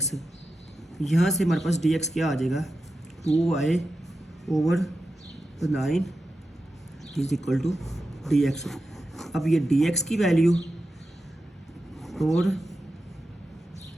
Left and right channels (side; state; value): both; normal; correlation 0.90